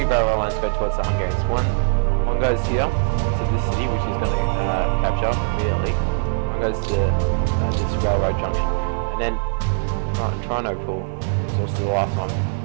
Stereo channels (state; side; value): silent; left; digital silence